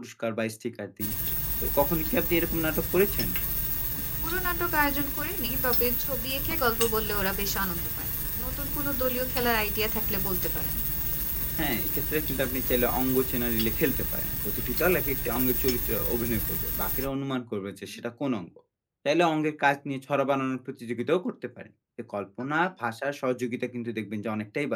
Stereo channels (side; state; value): both; identical; correlation 1.00